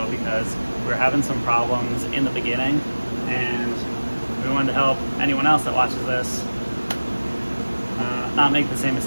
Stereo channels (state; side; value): inverted; both; correlation -1.00